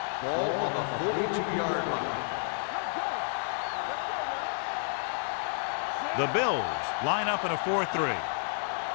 Ball on the 42-yard line. Let's go. Let's go now. The Bills line up in a 4-3.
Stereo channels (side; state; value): right; silent; 57 dB below the other